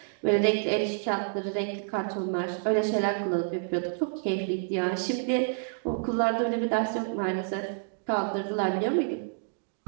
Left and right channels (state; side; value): silent; left; digital silence